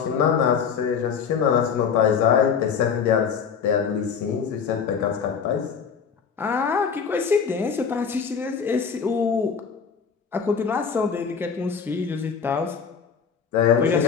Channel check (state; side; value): quieter; right; 6.5 dB